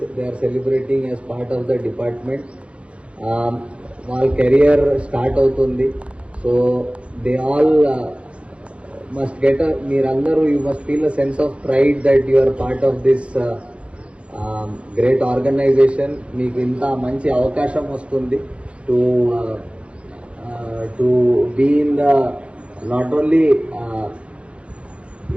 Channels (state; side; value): late; left; 0.061 ms